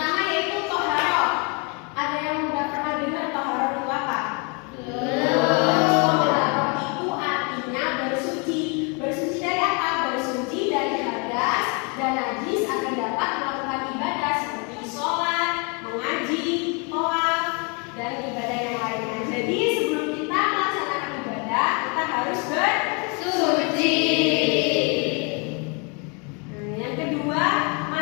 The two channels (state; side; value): quieter; right; 33.6 dB